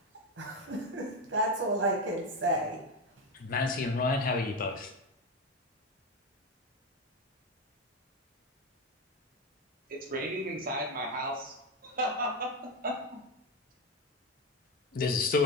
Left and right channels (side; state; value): both; normal; correlation 0.14